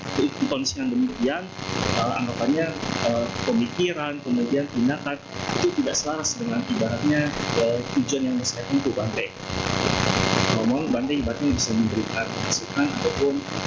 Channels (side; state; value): both; identical; correlation 1.00